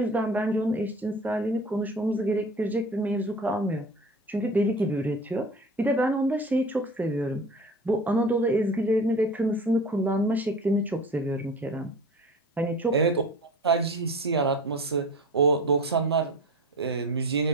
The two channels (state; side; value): normal; both; correlation 0.36